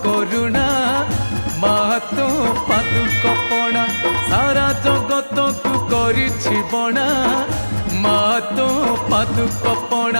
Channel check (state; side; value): inverted; both; correlation -1.00